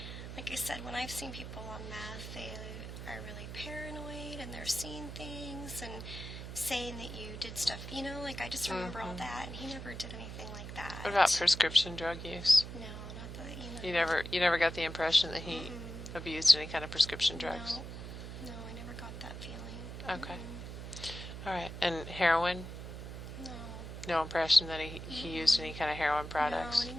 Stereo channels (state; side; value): noise; right; hum, 9 dB below the sound